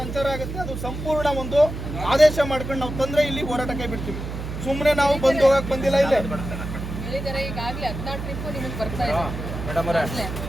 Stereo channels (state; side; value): noise; right; hum, 7 dB below the sound